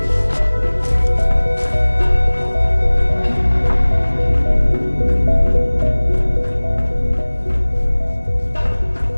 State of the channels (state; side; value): inverted; both; correlation -1.00